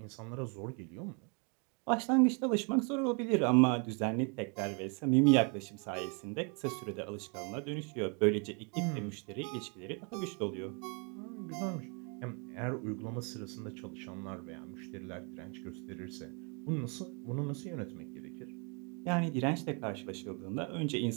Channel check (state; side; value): quieter; left; 35.4 dB